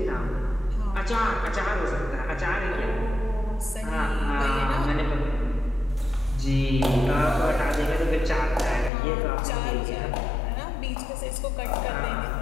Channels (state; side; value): drops out; right; at 8.9 s